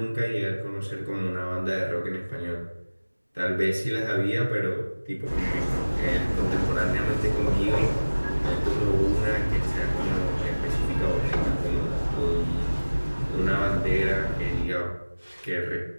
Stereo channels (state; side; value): inverted; both; correlation -1.00